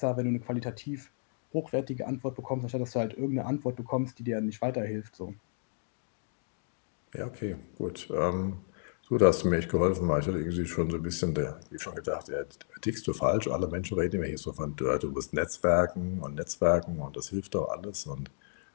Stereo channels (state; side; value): silent; right; digital silence